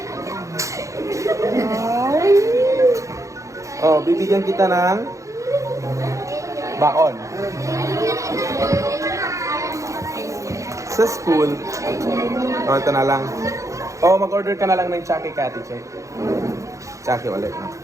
Oh, bibigyan kita ng baon. Sa school, ito na lang. Mag-order ka na lang ng Chucky Catty, check. Chucky ulit, no?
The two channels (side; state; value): left; late; 0.15 ms